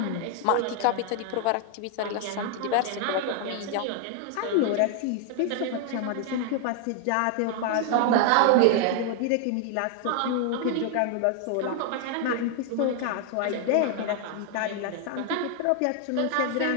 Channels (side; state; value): both; different; correlation 0.00